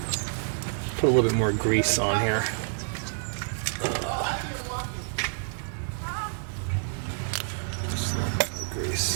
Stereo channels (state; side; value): silent; left; 59 dB below the other